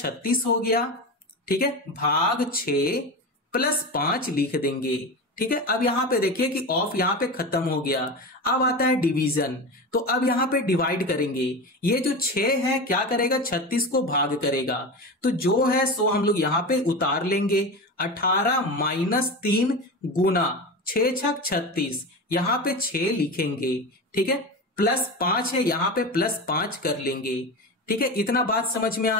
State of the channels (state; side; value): normal; both; correlation 0.25